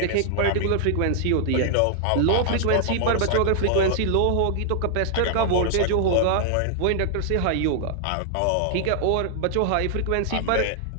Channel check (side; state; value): both; different; correlation 0.00